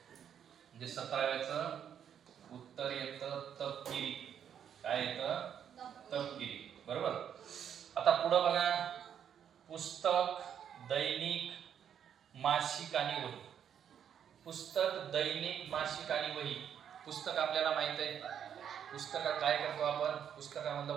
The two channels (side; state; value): left; quieter; 8.8 dB